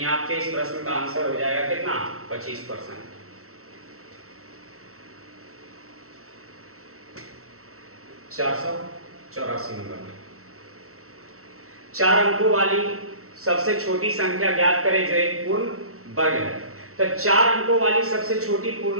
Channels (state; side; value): late; left; 0.63 ms